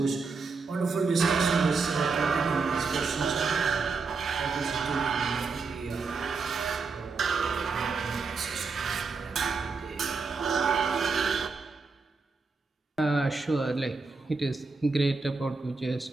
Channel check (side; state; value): left; quieter; 4.5 dB